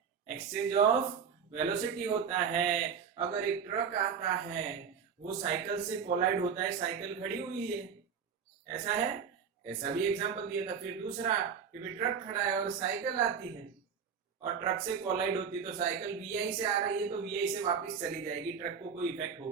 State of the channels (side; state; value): left; quieter; 6.8 dB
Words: एक्सचेंज ऑफ वेलोसिटी होता है। अगर एक ट्रक आता है, वो साइकिल से कोलाइड होता है, साइकिल खड़ी हुई है, ऐसा है? ऐसा भी एग्जांपल दिया था। फिर दूसरा कि भी ट्रक खड़ा है और साइकिल आती है और ट्रक से कोलाइड होती है, तो साइकिल VI से आ रही है तो VI से वापस चली जाएगी, ट्रक को कोई इफेक्ट